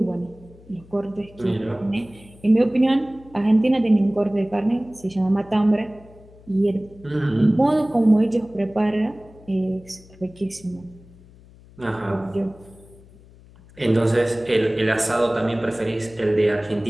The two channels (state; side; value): noise; left; hum, 24 dB below the sound